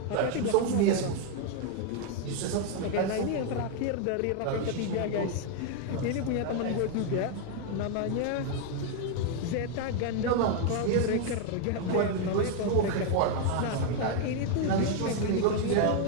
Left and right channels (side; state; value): both; different; correlation 0.01